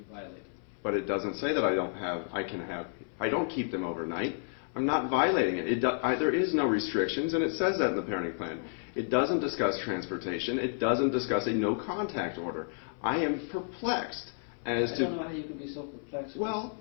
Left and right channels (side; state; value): right; silent; 57 dB below the other